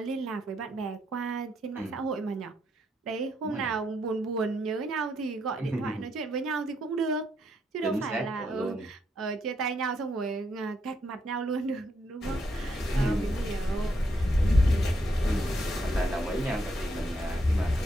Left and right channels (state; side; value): normal; both; correlation 0.77